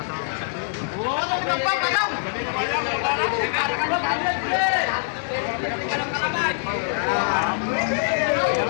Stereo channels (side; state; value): right; silent; digital silence